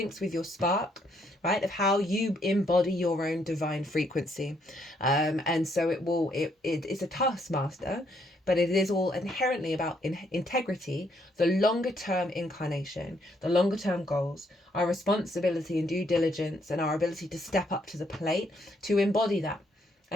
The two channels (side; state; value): both; normal; correlation 0.72